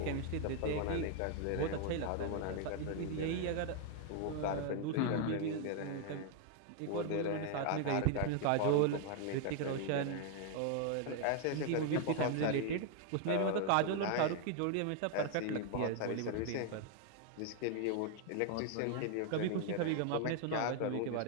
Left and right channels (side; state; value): both; different; correlation 0.00